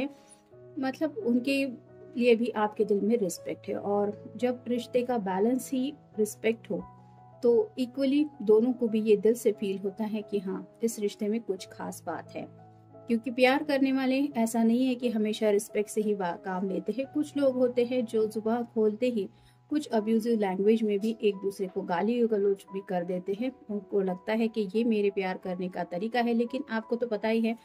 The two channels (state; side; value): identical; both; correlation 1.00